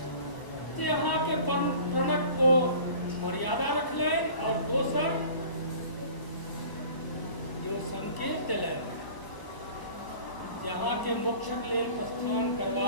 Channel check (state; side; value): late; right; 1.0 ms